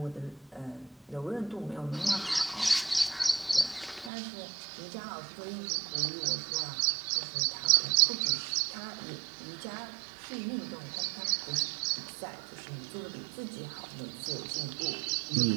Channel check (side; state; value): left; drops out; at 4.1 s